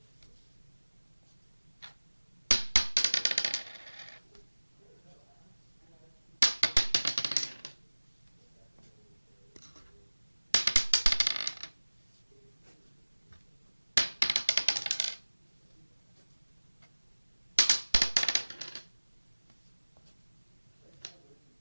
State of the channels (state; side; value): inverted; both; correlation -1.00